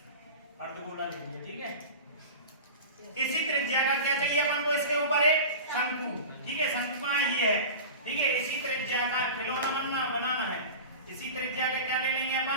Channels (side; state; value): both; inverted; correlation -0.32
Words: अर्धगोला ले लिया, ठीक है। इसी त्रिज्या का क्या चाहिए अपन को? इसके ऊपर एक शंकु, ठीक है, शंकु कहां है? ये है, ठीक है। इसी त्रिज्या का खिलौना बनाना है। इसी त्रिज्या का क्या ले लेंगे अपन?